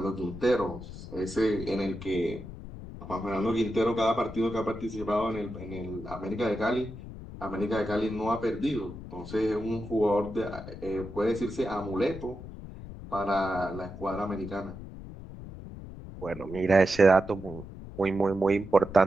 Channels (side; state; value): left; noise; rumble, 12 dB below the sound